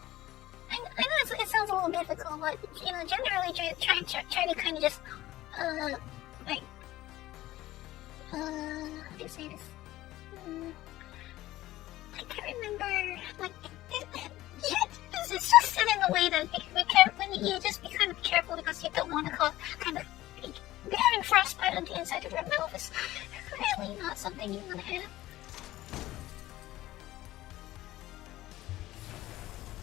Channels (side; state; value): right; quieter; 16.0 dB